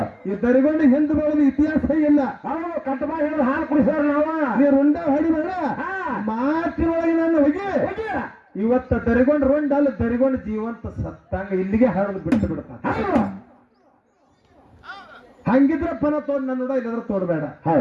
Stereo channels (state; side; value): identical; both; correlation 1.00